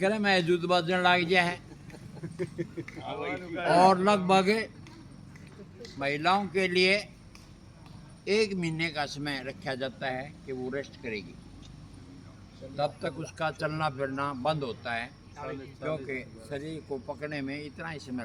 में जूत बजने लग गया है। और लगभग महिलाओं के लिए 1 महीने का समय रखा जाता है कि वो रेस्ट करेगी, तब तक उसका चलना फिरना बंद होता है, क्योंकि शरीर को पकड़ने में इतना ही समय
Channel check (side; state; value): both; identical; correlation 1.00